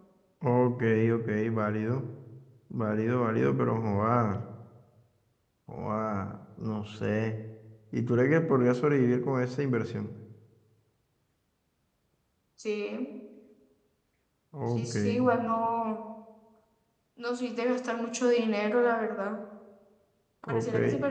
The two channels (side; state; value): both; identical; correlation 1.00